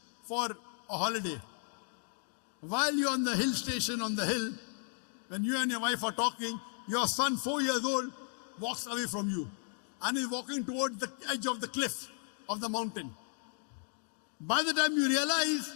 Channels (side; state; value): right; silent; 55 dB below the other